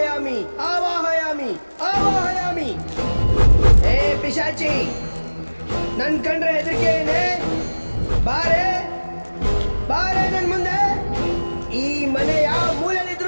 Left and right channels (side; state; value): both; inverted; correlation -1.00